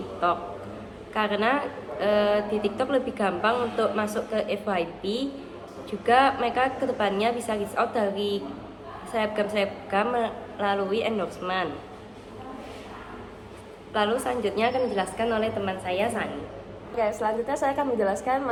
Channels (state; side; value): identical; both; correlation 1.00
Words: karena di TikTok lebih gampang untuk masuk ke FYP. Juga mereka kedepannya bisa reach out dari selebgram melalui endorsement. Lalu selanjutnya akan dijelaskan oleh teman saya Sani. Oke, selanjutnya saya akan menjelaskan